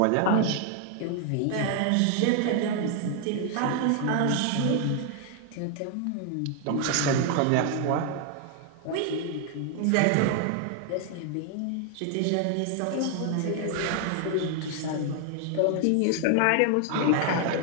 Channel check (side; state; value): both; different; correlation 0.00